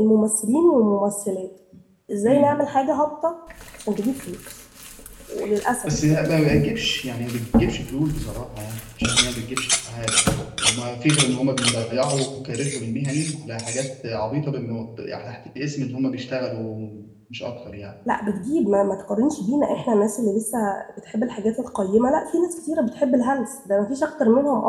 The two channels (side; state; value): both; identical; correlation 1.00